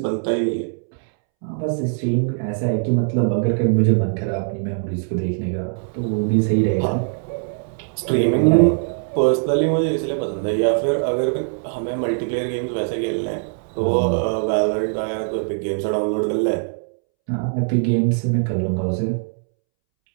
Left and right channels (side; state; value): left; silent; 65 dB below the other